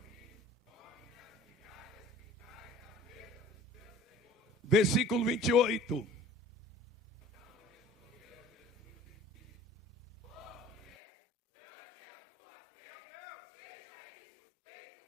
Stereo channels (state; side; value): drops out; right; at 10.9 s